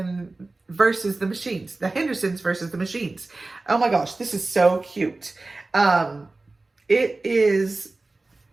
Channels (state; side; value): quieter; left; 3.3 dB